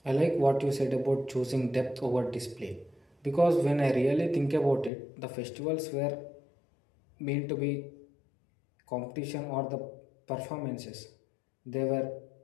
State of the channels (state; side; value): drops out; right; at 4.9 s